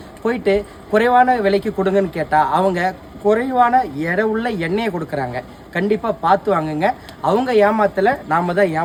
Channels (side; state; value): both; identical; correlation 1.00